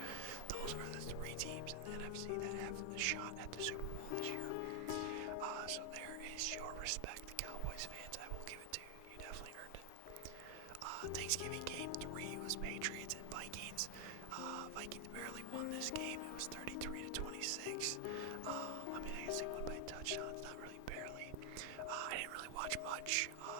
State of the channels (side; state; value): both; different; correlation 0.00